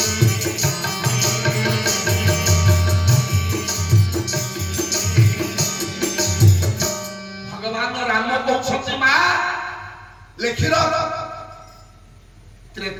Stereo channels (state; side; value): identical; both; correlation 1.00